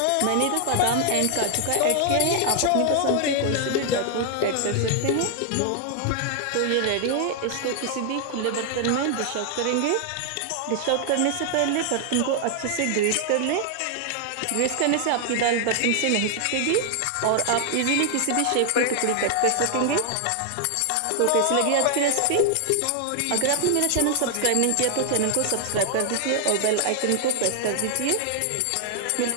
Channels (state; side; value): different; both; correlation 0.00